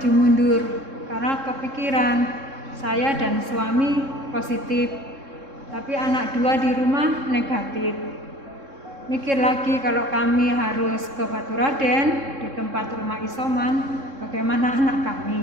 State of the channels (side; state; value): left; late; 3.7 ms